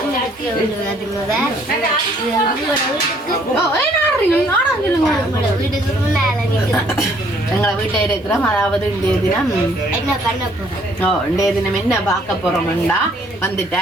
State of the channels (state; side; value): normal; both; correlation 0.63